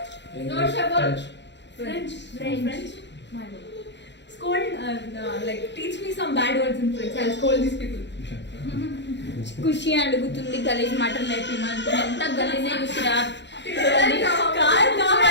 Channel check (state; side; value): late; right; 0.52 ms